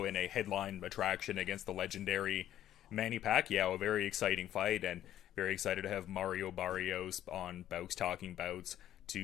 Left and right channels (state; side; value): quieter; right; 12.0 dB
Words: in a headline attraction against the legendary Manny Pacquiao. A very exciting fight, and very excited to have Mario Barrios on Bowks Talking Bouts